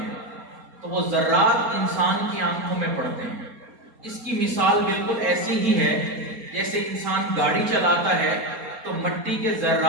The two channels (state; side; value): late; left; 4.2 ms